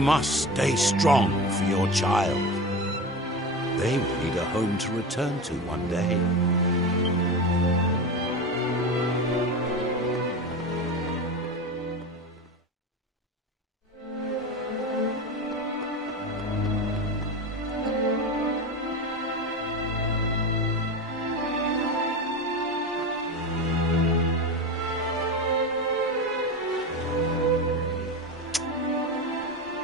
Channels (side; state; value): both; normal; correlation 0.25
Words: stay strong for your child. They will need a home to return to one day.